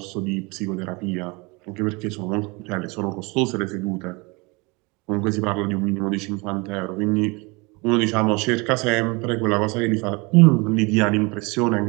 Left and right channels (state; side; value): quieter; left; 27.3 dB